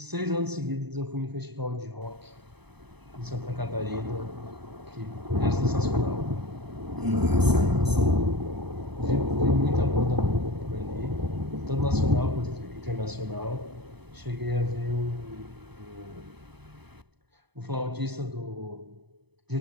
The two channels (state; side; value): late; left; 0.99 ms